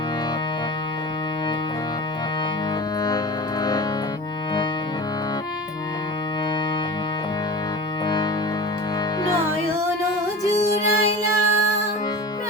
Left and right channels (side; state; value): both; normal; correlation 0.31